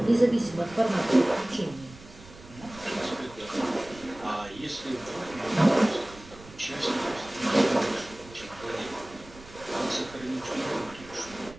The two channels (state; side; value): noise; right; rumble, 19 dB below the sound